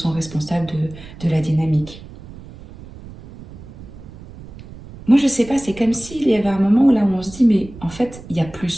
responsables de la dynamique. Moi, je sais pas, c'est comme s'il y avait un moment où là où on se dit, mais en fait, il y a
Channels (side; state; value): right; noise; rumble, 17 dB below the sound